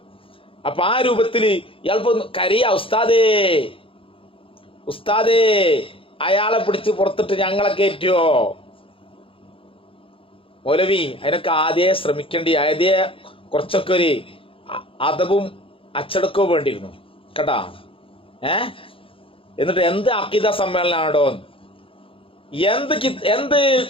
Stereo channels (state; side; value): late; right; 0.26 ms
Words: അപ്പൊ ആ രൂപത്തില് ഇയാളിപ്പോ കരയാ, ഉസ്താദേ ഉസ്താദേ അയാളെ പിടിച്ച് പുറത്തിട്ട് ഞങ്ങളെ കയറ്റുവോ? മൗലവി അതിനൊക്കെ ആദ്യമേ ശ്രമിക്കേണ്ടി, ആദ്യമേ കുറച്ചൊക്കെ ഒരു അദബും അച്ചടക്കവും വേണ്ടിയിരുന്നു കേട്ടാ. എന്നിട്ട് എന്ത് അഖീദ സമ്മേളനാണോ, എന്ത്